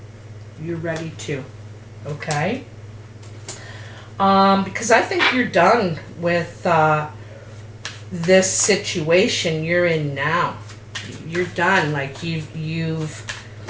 You're ready to. Okay? Because I think you're done with this situation you're in now. You're done. Like you've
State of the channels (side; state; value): both; identical; correlation 1.00